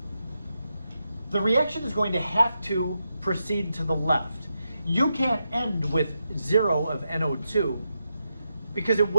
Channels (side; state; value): both; inverted; correlation -0.86